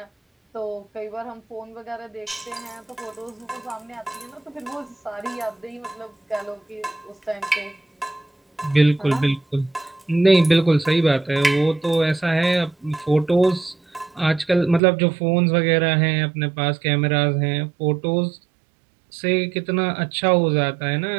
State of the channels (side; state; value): left; drops out; at 14.8 s